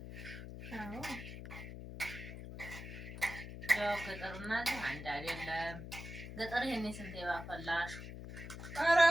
አዎ ያው ገጠርና እዚህ አንድ አይደለም። ገጠር ይሄኔ ስንት ባፈላሽ። ኧረ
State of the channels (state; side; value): noise; left; hum, 10 dB below the sound